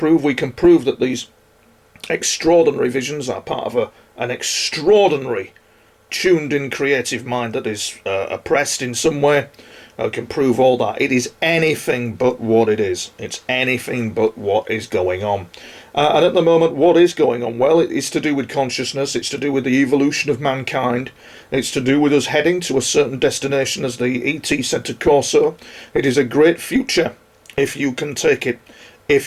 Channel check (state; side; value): identical; both; correlation 1.00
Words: We can prove that these extraordinary visions are part of an extraordinary tuned-in creative mind that is oppressed in some way. I can prove all that. It is anything but what it is. It's anything but what is going on. And at the moment, what is going on? Well, it is to do with consciousness. It's to do with the evolution of mankind. It's to do with us heading to a certain destination, as the ET said to Corso. It is a great future if you can take it,